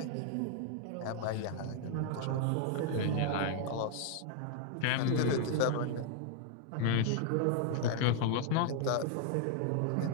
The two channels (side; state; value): both; different; correlation 0.00